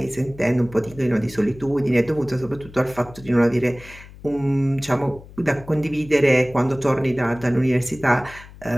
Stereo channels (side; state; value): left; noise; hum, 19 dB below the sound